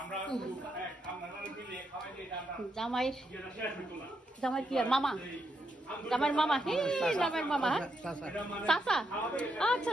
মিলিয়ে খাওয়াই দিয়ে জামাই কি আর মামা জামাইর মামা জামাইর মামা চাচা আচ্ছা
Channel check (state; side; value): normal; both; correlation 0.80